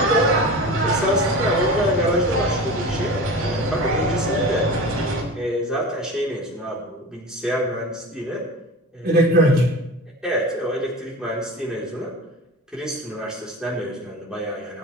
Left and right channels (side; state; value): both; normal; correlation 0.32